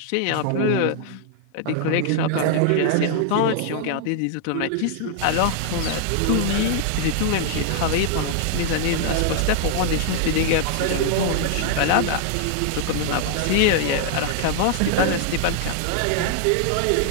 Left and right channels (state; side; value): different; both; correlation 0.00